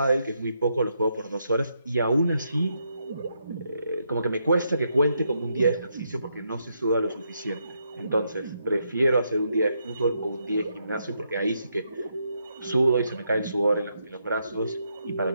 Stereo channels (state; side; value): inverted; both; correlation -0.79